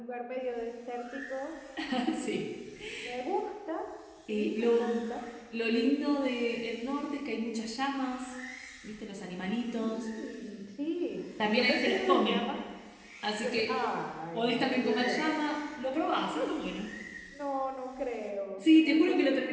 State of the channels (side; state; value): both; identical; correlation 1.00